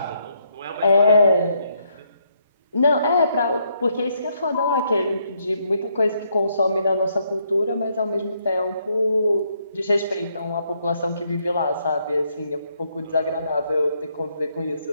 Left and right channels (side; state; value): both; inverted; correlation -0.74